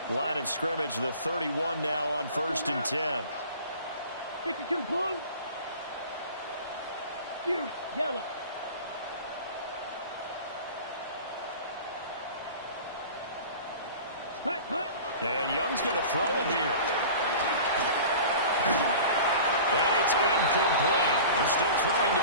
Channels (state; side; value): inverted; both; correlation -0.39